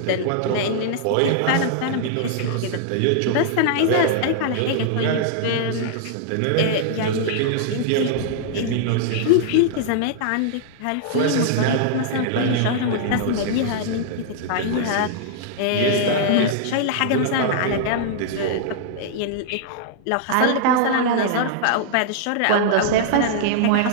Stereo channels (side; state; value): both; different; correlation -0.01